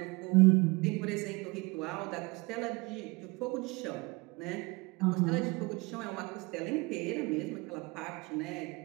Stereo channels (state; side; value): quieter; left; 25.6 dB